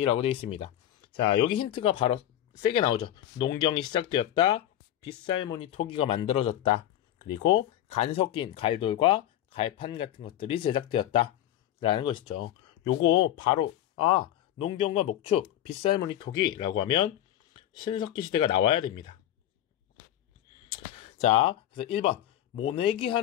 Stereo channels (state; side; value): quieter; right; 12.3 dB